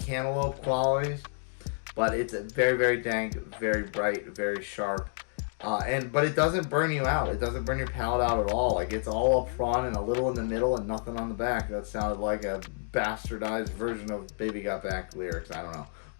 qualities. But it's a very, very dank, very bright, very sharp, but it doesn't burn you out. It doesn't burn your palate out at all. Like, it's all up front and a little in the middle and nothing on the back. That sounded like a bastardized version of Baby Got Back lyrics. I don't know,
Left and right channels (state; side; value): silent; right; 58 dB below the other